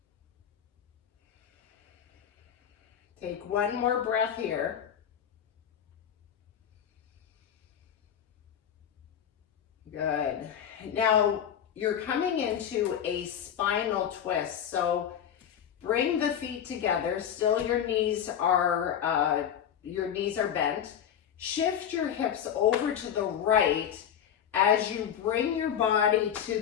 Take one more breath here. Good. Now you're coming into a spinal twist. So bring the feet together. Still your knees are bent. Shift your hips over to the right as you bring your body to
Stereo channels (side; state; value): right; quieter; 9.1 dB